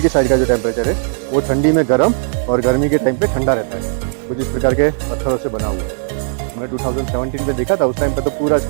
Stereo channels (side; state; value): left; silent; digital silence